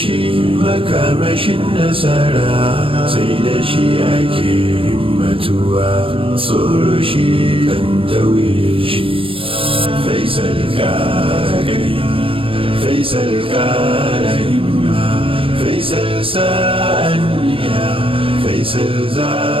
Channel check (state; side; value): late; left; 0.26 ms